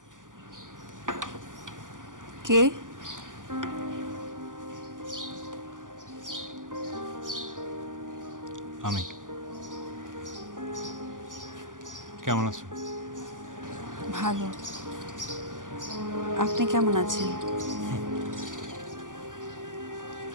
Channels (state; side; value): late; left; 0.88 ms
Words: কে? আমি। কেমন আছো? ভালো। আপনি কেমন আছেন?